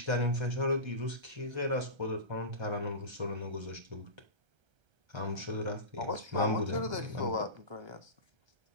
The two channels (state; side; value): late; left; 1.3 ms